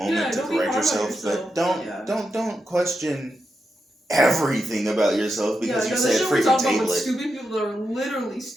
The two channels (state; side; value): normal; both; correlation 0.87